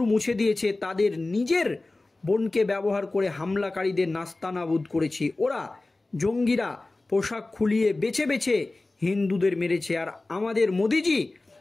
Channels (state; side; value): quieter; right; 3.1 dB